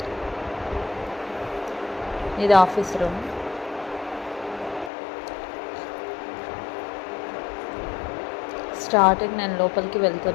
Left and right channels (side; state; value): right; drops out; at 4.9 s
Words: ఇది ఆఫీస్ రూమ్. స్టార్టింగ్ నేను లోపలికి